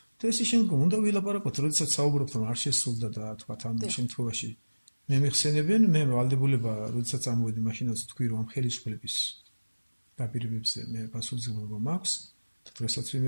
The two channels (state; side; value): inverted; both; correlation -1.00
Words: და ესე შემდგომ უნდა ვილაპარაკოთ, როდესაც საუბრობთ, რომ არ შესრულდა და თქვათ ამ შემთხვევაში მე მეხსენებენ, მე ვალდებულება, როდესაც ამოვედი, მაშინაც თქვი, რომ ამ ხელისუფლების დაპირებებზე მე პასუხისმგებლობა მაქვს და დღესაც